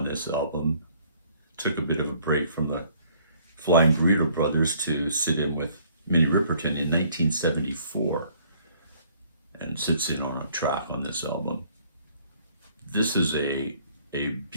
this album. Took a bit of a break from the Flying Burrito Brothers to sit in with Minnie Riperton in 1974, and sits in on a track on this album. This is a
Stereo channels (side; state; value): both; inverted; correlation -0.61